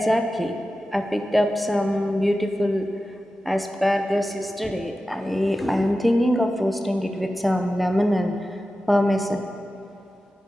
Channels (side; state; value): both; normal; correlation 0.93